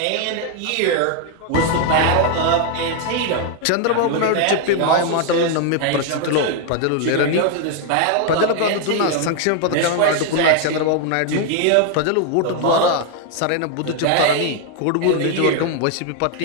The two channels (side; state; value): both; different; correlation 0.00